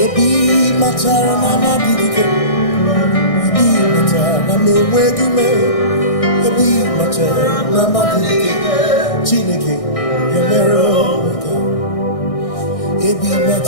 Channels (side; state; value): right; late; 1.6 ms